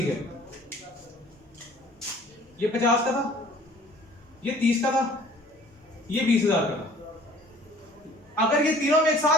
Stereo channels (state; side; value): normal; both; correlation 0.52